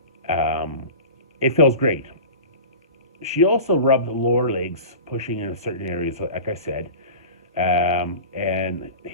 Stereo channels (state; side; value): inverted; both; correlation -0.35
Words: It feels great. She also rubbed the lower legs, pushing in certain areas, like I said, and